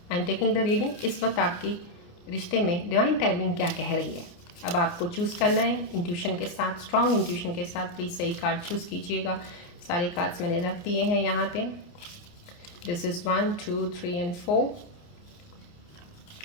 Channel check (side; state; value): right; late; 29 ms